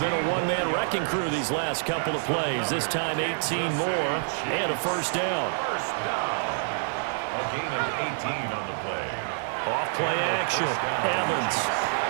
a one-man wrecking crew these last couple of plays. This time 18 more and a first down. First down. A gain of 18 on the play. Off play action. Evans.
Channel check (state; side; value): silent; left; digital silence